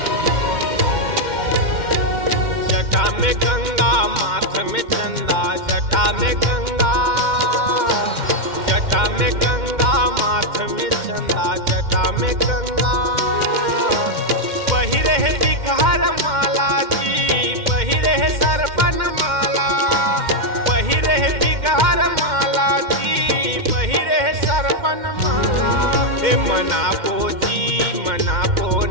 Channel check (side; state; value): left; late; 2.1 ms